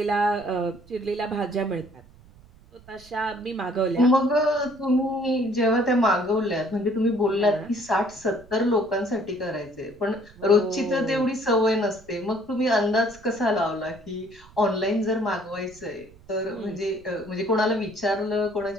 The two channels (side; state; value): right; noise; rumble, 25 dB below the sound